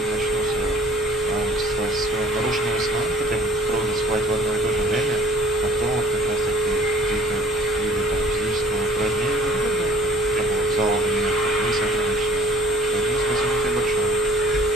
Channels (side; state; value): both; normal; correlation 0.53